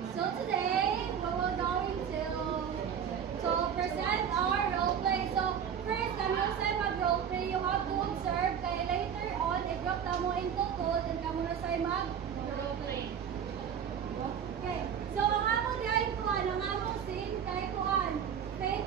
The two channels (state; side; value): quieter; left; 8.1 dB